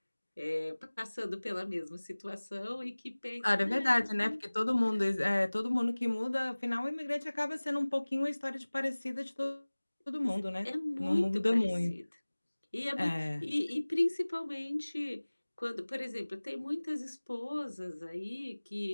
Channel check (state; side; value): inverted; both; correlation -1.00